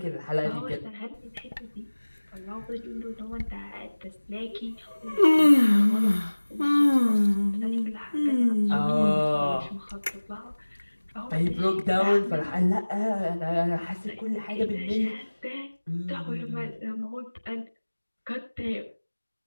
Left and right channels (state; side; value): inverted; both; correlation -1.00